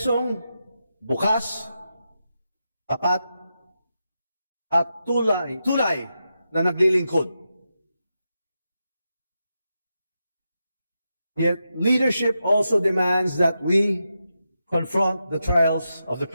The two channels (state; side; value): inverted; both; correlation -0.87